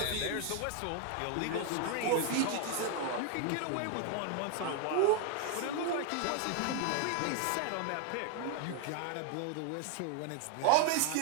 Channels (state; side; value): different; both; correlation 0.00